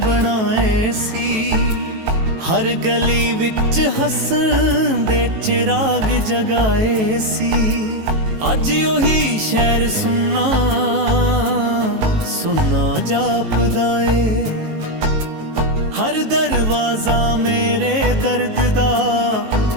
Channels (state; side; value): late; left; 18 ms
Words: ਸੀ। ਹਰ ਗਲੀ ਵਿੱਚ ਹੱਸਣ ਦੇ ਚਿਰਾਗ ਜਗਾਏ ਸੀ। ਅੱਜ ਉਹੀ ਸ਼ਹਿਰ ਸੁੰਨਾ ਸੁੰਨਾ ਜਾਪਦਾ ਏ। ਹਰ ਦਰਵਾਜ਼ਾ ਮੇਰੇ ਦਰਦ ਦਾ